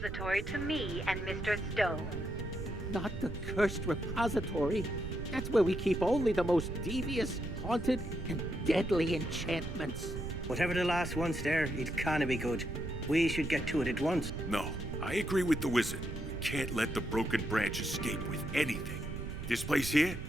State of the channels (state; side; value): noise; right; rumble, 7 dB below the sound